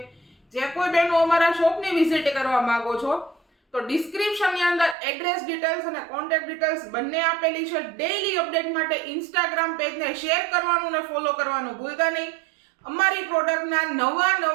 જે કોઈ બહેનો અમારા શોપની વિઝિટ કરવા માંગો છો તો ડિસ્ક્રિપ્શનની અંદર એડ્રેસ ડિટેલ્સ અને કોન્ટેક્ટ ડિટેલ્સ બંને આપેલી છે. ડેઈલી અપડેટ માટે ઇન્સ્ટાગ્રામ પેજને શેર કરવાનું અને ફોલો કરવાનું ભૂલતા નહીં. અમારી પ્રોડક્ટના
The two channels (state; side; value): drops out; left; at 5.0 s